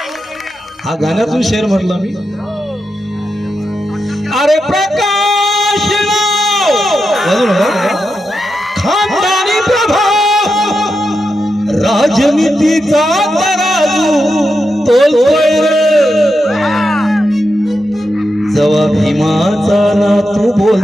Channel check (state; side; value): normal; both; correlation 0.87